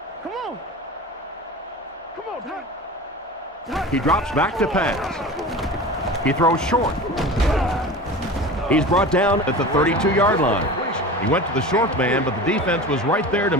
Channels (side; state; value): both; normal; correlation 0.34